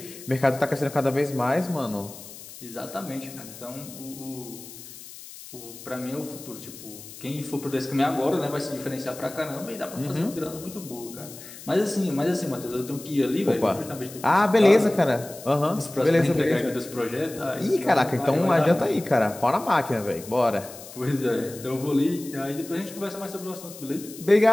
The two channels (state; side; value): noise; left; hiss, 15 dB below the sound